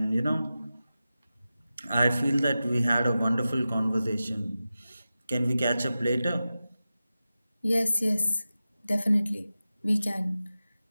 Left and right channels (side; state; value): both; inverted; correlation -0.94